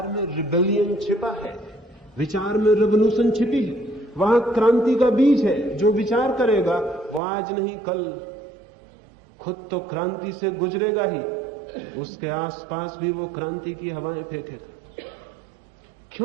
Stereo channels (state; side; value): drops out; left; at 7.2 s